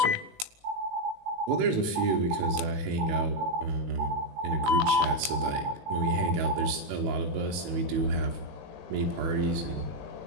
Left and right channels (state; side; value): late; left; 19 ms